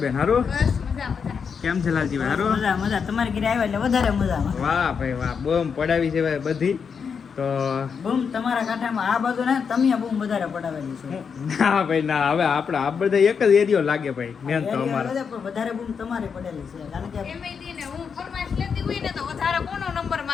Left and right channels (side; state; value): right; quieter; 6.3 dB